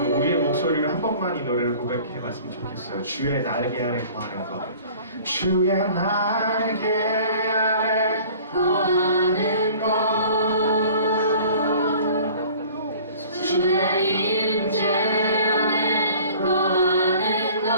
우리의 목소리를 한 번만 이 노래를 고백해봤으면 좋겠어요. 주의 날개 아래 거하는 것. 주의 날개 아래 거하는 것 주의 임재 안에 거하는 것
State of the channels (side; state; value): both; inverted; correlation -0.48